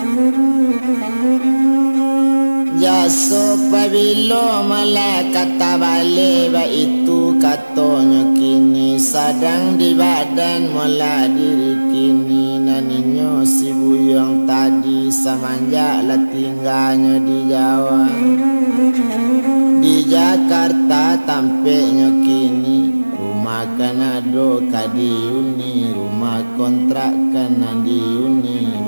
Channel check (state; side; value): inverted; both; correlation -1.00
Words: Jaso pabilo malah kata balik ba itu katanya kini sadang di badan mula diri kini naninyo si buyong tadi semenjak lah tinggalnya di Jawa. Di Jakarta tampaknya kini rumah kanado kadiuni rumah kontrakan nandiuni